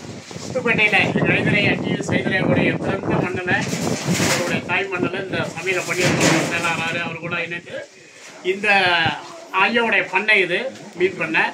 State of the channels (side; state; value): both; identical; correlation 1.00